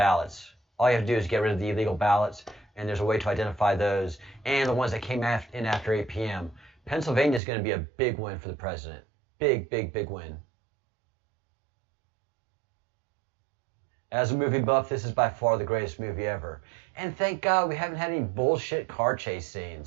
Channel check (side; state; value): left; drops out; at 7.4 s